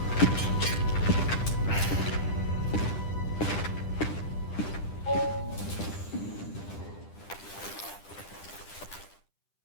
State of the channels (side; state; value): right; late; 10 ms